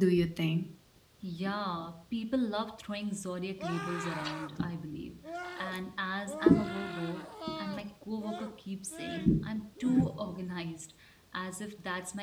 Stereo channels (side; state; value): both; identical; correlation 1.00